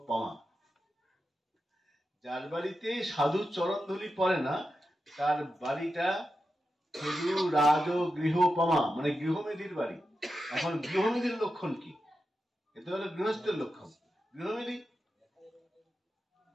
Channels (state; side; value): normal; both; correlation 0.89